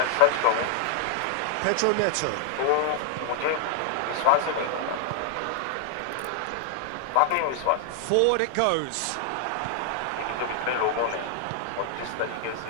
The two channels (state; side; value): different; both; correlation 0.00